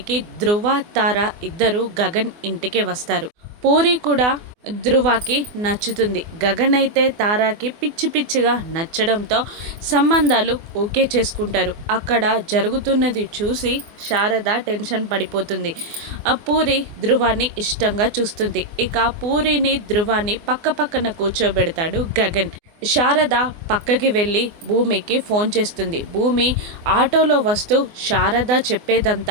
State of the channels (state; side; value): late; left; 24 ms